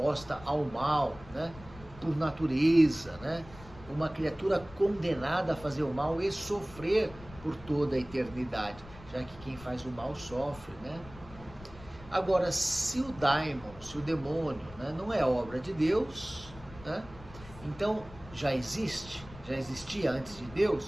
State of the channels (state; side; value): noise; left; rumble, 18 dB below the sound